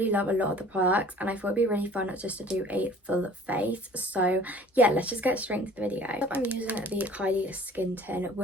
love a lot of the products and I thought it'd be really fun just to do a full face. So yeah, let's just get straight into the video. I'm using the Kylie skin tint,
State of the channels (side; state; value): both; normal; correlation 0.49